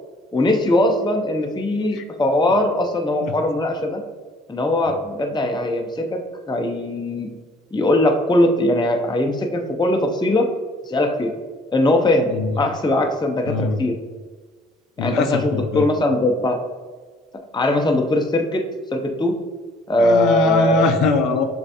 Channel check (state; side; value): normal; both; correlation 0.59